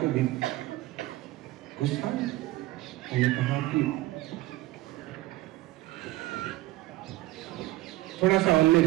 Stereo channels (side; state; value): left; quieter; 17.4 dB